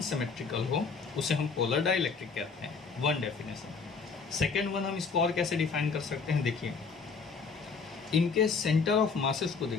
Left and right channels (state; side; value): quieter; right; 5.0 dB